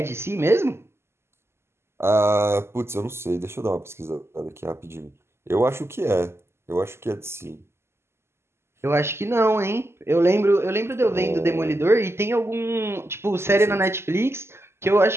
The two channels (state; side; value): late; left; 0.12 ms